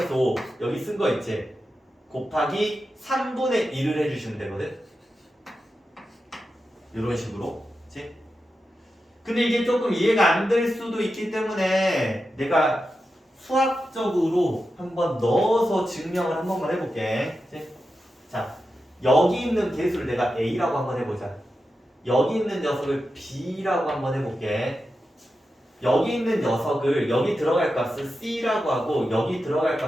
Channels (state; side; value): normal; both; correlation 0.90